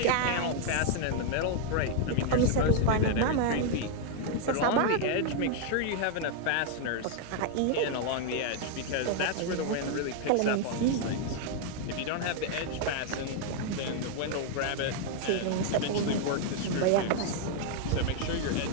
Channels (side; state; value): both; different; correlation 0.00